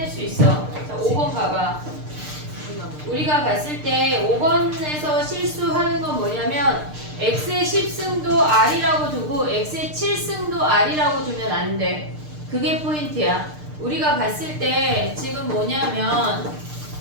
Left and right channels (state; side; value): late; left; 6.6 ms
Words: 수 있어. 자, 5번 가봐. 우리가 봤을 때 5번에서 실수하는 건 뭐냐면 x의 10승도 r이라고 두고 x의 7승도 r이라고 두면 안 돼. 그게 포인트야. 우리가 봤을 때 지금 뭐냐면